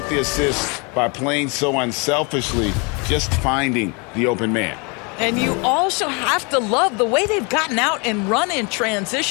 the assists by playing so unselfishly, just finding the open man. And you also have to love the way they've gotten out and run in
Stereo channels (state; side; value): quieter; right; 31.7 dB